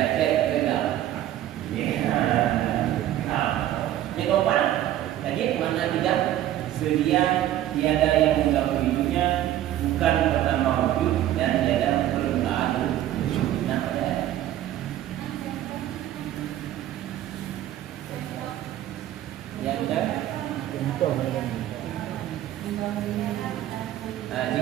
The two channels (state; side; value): quieter; left; 12.8 dB